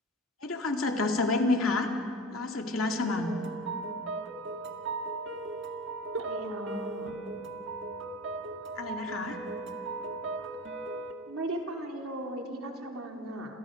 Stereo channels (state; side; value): normal; both; correlation 0.34